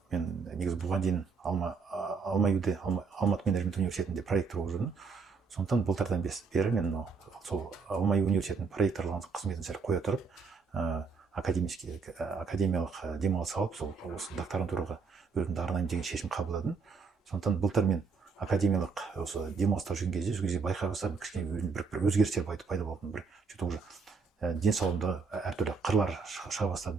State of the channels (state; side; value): quieter; left; 5.1 dB